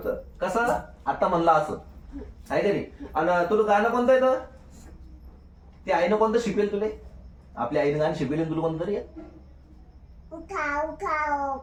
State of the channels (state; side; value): identical; both; correlation 1.00